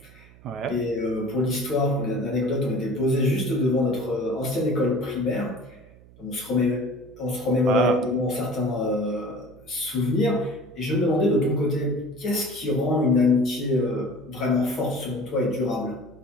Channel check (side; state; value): right; noise; hum, 24 dB below the sound